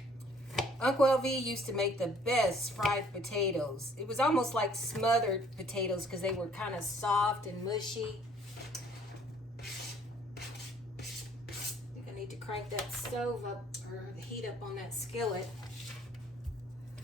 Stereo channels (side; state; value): both; normal; correlation 0.59